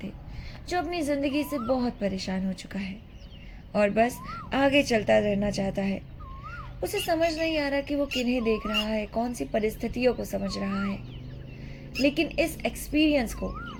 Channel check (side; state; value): both; identical; correlation 1.00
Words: जो अपनी ज़िंदगी से बहुत परेशान हो चुका है और बस आगे चलता रहना चाहता है। उसे समझ नहीं आ रहा कि वो किन्हें देख रहा है, कौन सी परिस्थितियों को समझ रहा है, लेकिन इस एक्सपीरियंस को